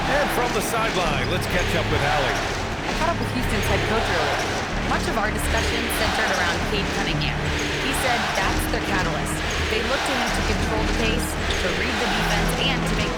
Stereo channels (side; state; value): both; identical; correlation 1.00